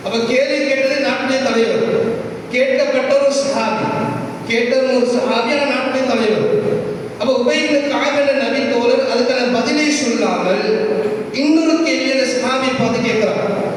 அப்ப கேள்வி கேட்டது நாட்டுடைய தலைவர். கேட்கப்பட்ட ஒரு சஹாபி, நாட்டுடைய தலைவர். அப்ப உபை இப்னு கஅப் என்ற நபித்தோழர் அதுக்கான பதிலை சொல்லாமல் இன்னொரு கேள்வி அந்த சஹாபியை பார்த்து கேட்கிறார்.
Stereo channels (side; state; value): both; identical; correlation 1.00